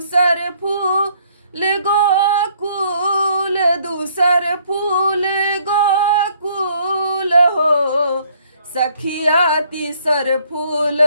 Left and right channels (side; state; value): both; inverted; correlation -0.64